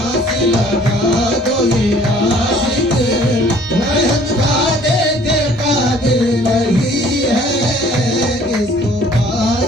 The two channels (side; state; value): both; normal; correlation 0.55